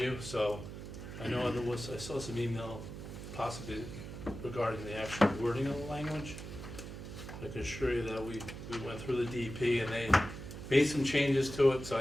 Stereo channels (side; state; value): right; noise; hum, 10 dB below the sound